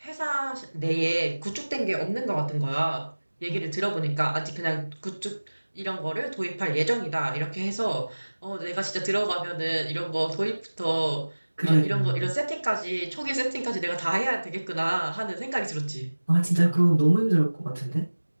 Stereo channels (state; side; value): inverted; both; correlation -1.00